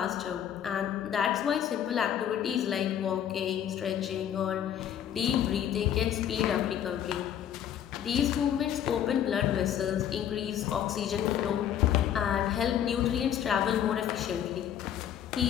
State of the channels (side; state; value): right; quieter; 9.9 dB